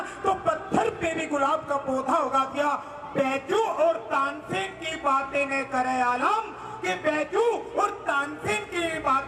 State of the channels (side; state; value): both; identical; correlation 1.00